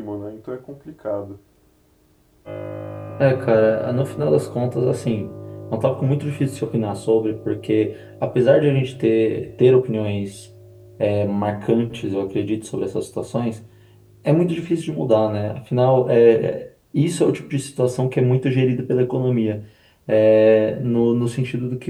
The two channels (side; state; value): both; identical; correlation 1.00